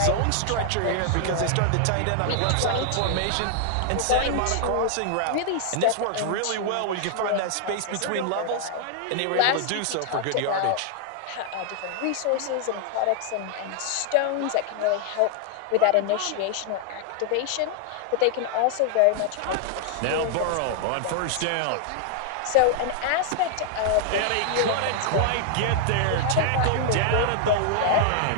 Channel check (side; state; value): both; different; correlation 0.00